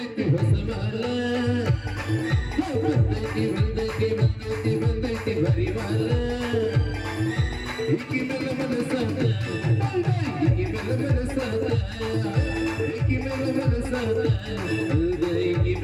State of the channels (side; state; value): both; identical; correlation 1.00